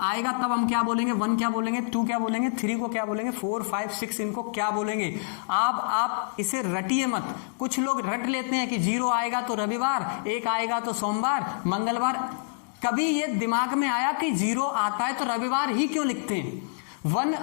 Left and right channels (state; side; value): silent; right; digital silence